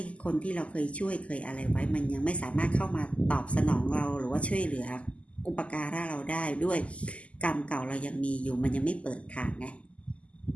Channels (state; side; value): late; right; 0.061 ms